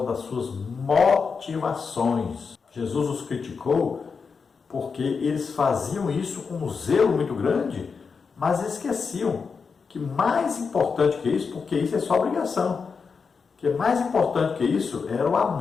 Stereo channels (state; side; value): quieter; right; 5.4 dB